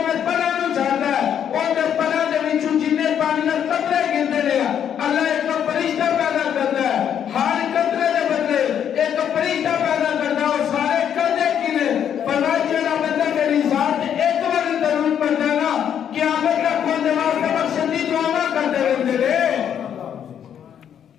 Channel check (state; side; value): quieter; right; 9.0 dB